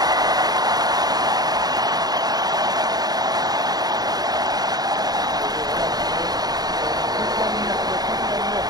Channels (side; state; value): left; late; 0.19 ms